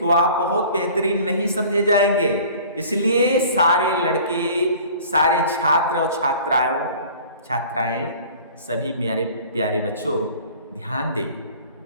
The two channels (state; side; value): inverted; both; correlation -0.46